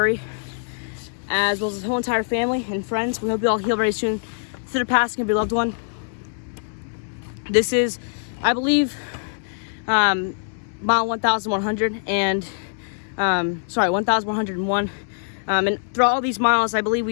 as well as the whole entire family and friends, we hope you all heal very soon through the passing of your loved one. This is, I believe, mile 1,100 and 1,101. And throughout all these miles, I believe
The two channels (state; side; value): silent; right; 63 dB below the other